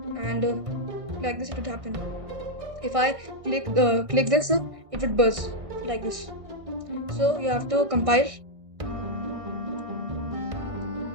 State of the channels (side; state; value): left; late; 1.6 ms